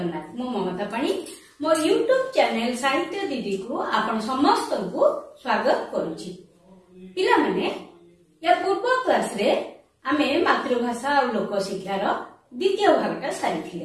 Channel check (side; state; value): both; identical; correlation 1.00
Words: मो ममता पाणी मो यूट्यूब चैनल साहित्य दीदी को आपण समस्त को स्वागत करुछि। पिला माने या पूर्व क्लास रे आमे मातृभाषा और लोक शिक्षार द्वितीय भागटा